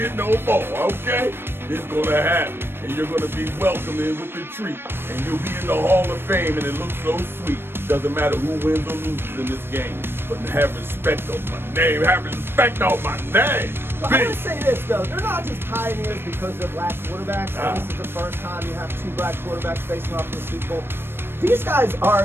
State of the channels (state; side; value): late; left; 0.11 ms